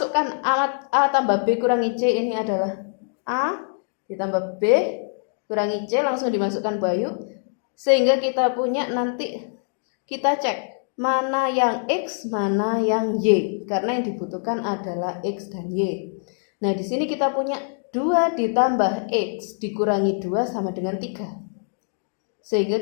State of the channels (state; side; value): silent; right; digital silence